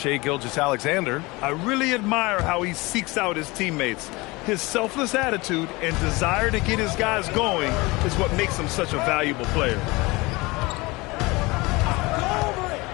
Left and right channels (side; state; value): right; quieter; 23.4 dB